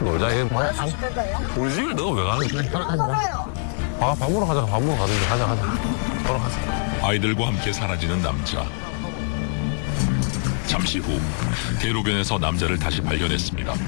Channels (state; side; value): silent; right; digital silence